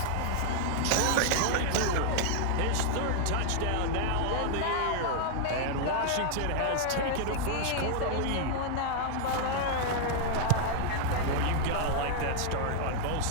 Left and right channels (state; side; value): different; both; correlation 0.00